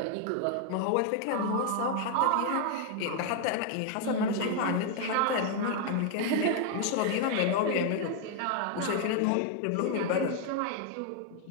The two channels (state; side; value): different; both; correlation 0.00